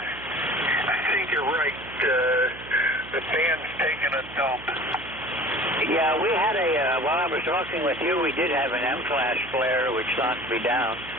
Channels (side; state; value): right; noise; hum, 17 dB below the sound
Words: I think you're right. The band's taking a dump. Yeah, we had while I was talking with you, we did have an M-class flare, which knocked me down.